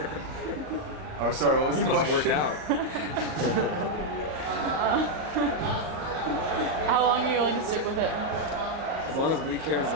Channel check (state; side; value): late; left; 38 ms